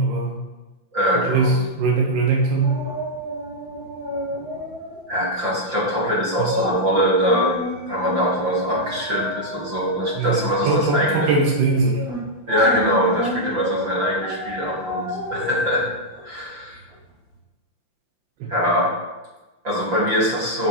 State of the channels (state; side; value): late; left; 5.8 ms